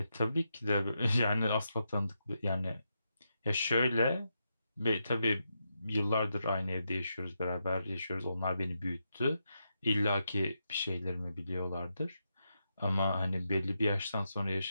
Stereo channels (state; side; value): inverted; both; correlation -0.84